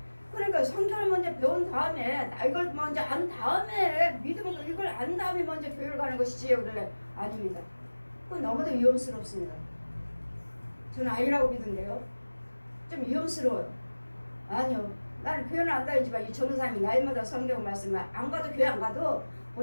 그러니까 성경을 먼저 배운 다음에 이걸 먼저 안 다음에 이걸 안 다음에 먼저 교회를 가는 것이지. 그래 아닙니다. 그건 너무도 위험스럽습니다. 저는 아니라고 믿는데요. 좀 위험스러워요. 아니요, 나는 교회는 안 다니지만 이 전도사님이 나이마다 성경 말씀을 안 가도 교회 안 가도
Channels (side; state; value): both; inverted; correlation -1.00